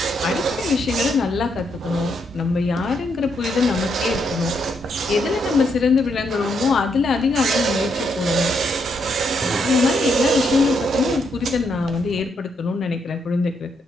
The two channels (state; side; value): normal; both; correlation 0.77